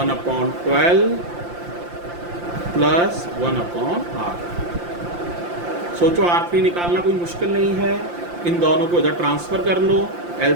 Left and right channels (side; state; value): left; late; 5.8 ms